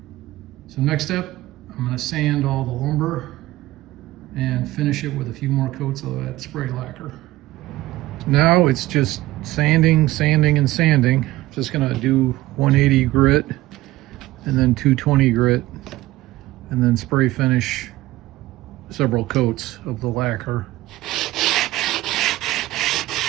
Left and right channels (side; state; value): left; quieter; 17.2 dB